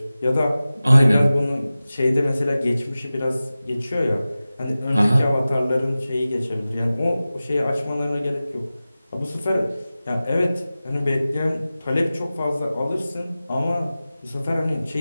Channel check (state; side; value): inverted; both; correlation -0.96